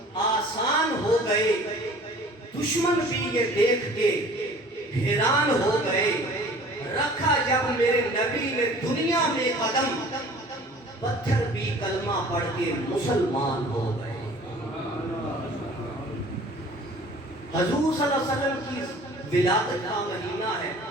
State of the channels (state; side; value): normal; both; correlation 0.48